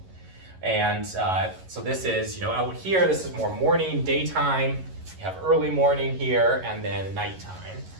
And so this is, out here, this is more morning, daytime. You have early morning here, and then nighttime.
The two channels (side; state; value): left; late; 11 ms